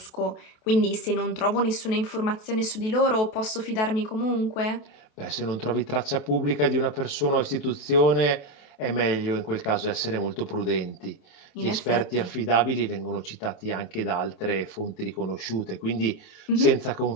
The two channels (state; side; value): late; right; 28 ms